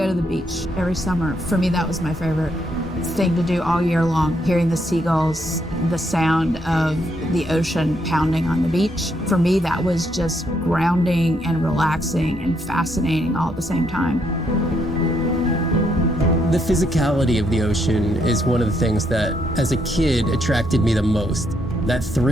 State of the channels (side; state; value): both; normal; correlation 0.75